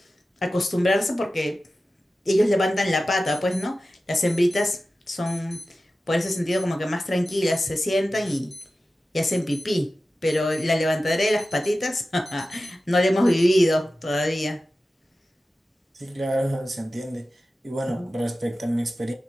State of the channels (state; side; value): normal; both; correlation 0.94